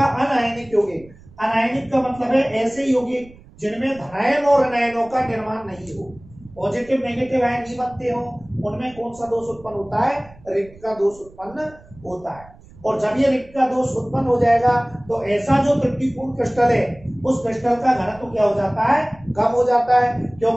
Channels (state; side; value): noise; right; rumble, 23 dB below the sound